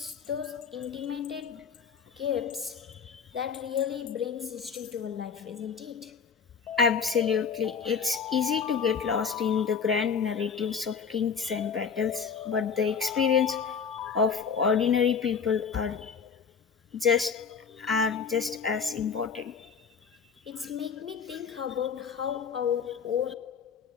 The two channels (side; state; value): right; quieter; 6.2 dB